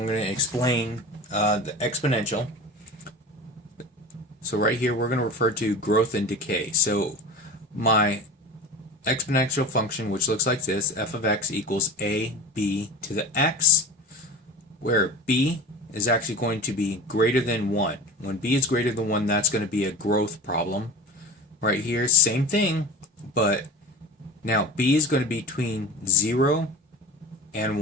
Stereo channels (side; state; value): both; normal; correlation 0.33